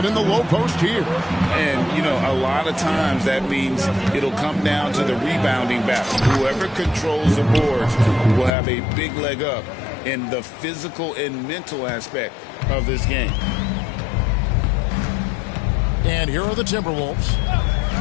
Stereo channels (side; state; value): right; drops out; at 8.5 s